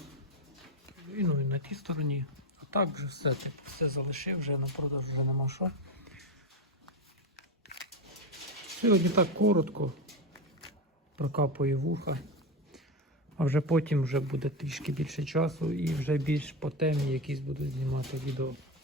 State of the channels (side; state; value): both; normal; correlation 0.14